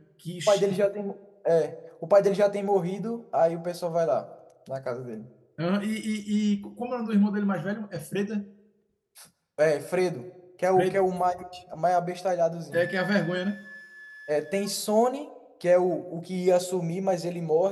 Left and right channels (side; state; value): both; identical; correlation 1.00